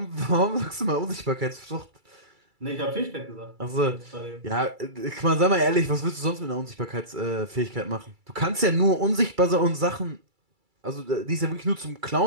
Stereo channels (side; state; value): left; late; 2.3 ms